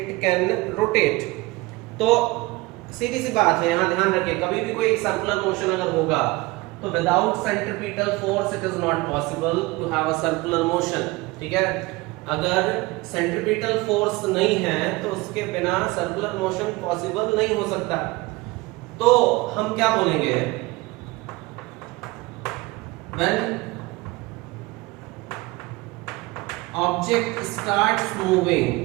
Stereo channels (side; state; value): left; quieter; 21.9 dB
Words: can rotate. तो सीधी सी बात है, यहां ध्यान रखिए, कभी भी कोई सर्कुलर मोशन अगर होगा तो without centripetal force it is not possible to have a circular motion. ठीक है, अगर सेंट्रीपिटल फोर्स नहीं है तो उसके बिना सर्कुलर मोशन पॉसिबल नहीं हो सकता। तो हम क्या बोलेंगे? When object starts moving